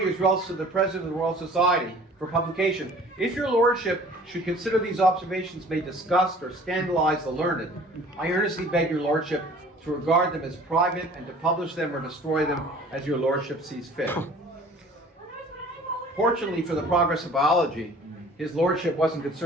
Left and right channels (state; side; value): normal; both; correlation 0.49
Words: his results to the President of the Royal Society for publication, if your lordship should consider these observations may disgust or scandalize the learned, I earnestly beg your lordship to regard them as private and to publish them or destroy them as your lordship sees fit. Fortunately for the progress of biology, his lordship wasn't